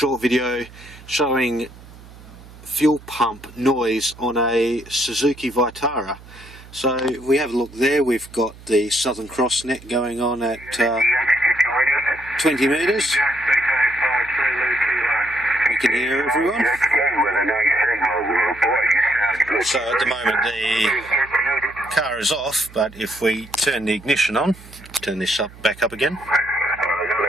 video showing fuel pump noise on a Suzuki Vitara. So if we have a look there, we've got the Southern Cross net going on at 20 metres. We can hear everyone. So at the moment the car is off, but if we turn the ignition on, turn this back up again.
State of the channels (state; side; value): noise; right; hum, 20 dB below the sound